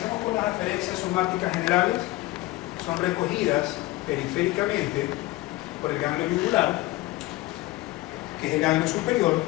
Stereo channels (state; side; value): quieter; right; 18.8 dB